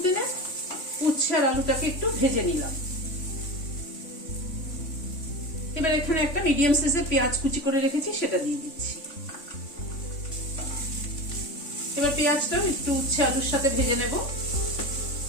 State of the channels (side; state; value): right; late; 3.5 ms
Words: উচ্ছে আর আলুটাকে একটু ভেজে নিলাম। এবার এখানে একটা মিডিয়াম সাইজের পেঁয়াজ কুচি করে রেখেছি, সেটা দিয়ে দিচ্ছি। এবার পেঁয়াজটাও একটু উচ্ছে আলুর সাথে ভেজে নেব।